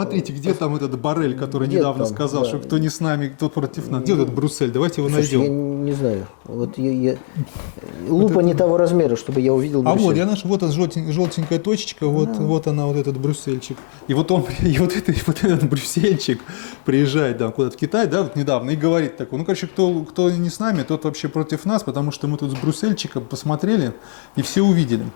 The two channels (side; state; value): right; silent; digital silence